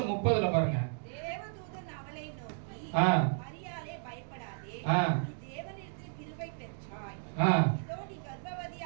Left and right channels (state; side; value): silent; left; 55 dB below the other